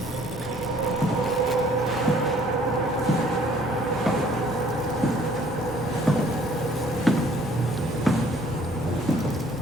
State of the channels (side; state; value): both; normal; correlation 0.58